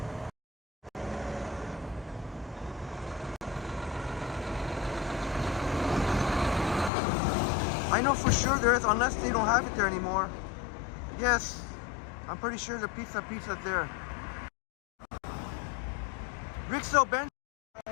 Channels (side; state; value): right; drops out; at 6.9 s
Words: I know for sure there is, unless they don't have it there anymore. Yes, I'm pretty sure the pizza's there. Rixo Benson,